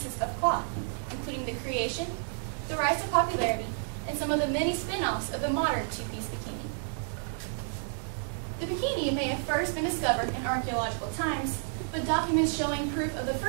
of cloth, including the creation, the rise to popularity, and some of the many spin-offs of the modern two-piece bikini. The bikini may have first been discovered in archaeological times, but documents showing proof of the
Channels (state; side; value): silent; left; 57 dB below the other